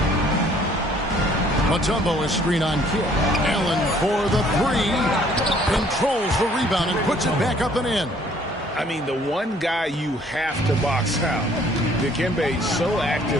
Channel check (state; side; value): normal; both; correlation 0.60